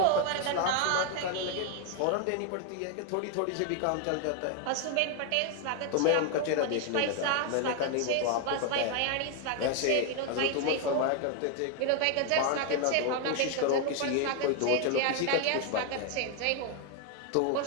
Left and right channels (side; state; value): both; different; correlation 0.01